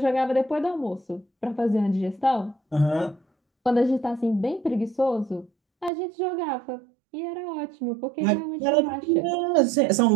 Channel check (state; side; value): drops out; left; at 5.9 s